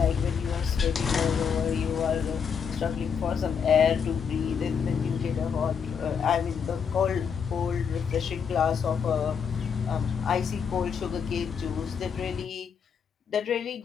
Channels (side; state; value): right; quieter; 6.8 dB